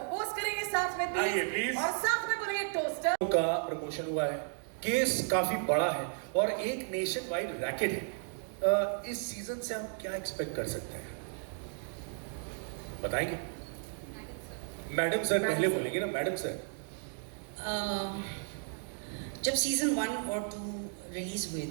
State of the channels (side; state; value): left; silent; 55 dB below the other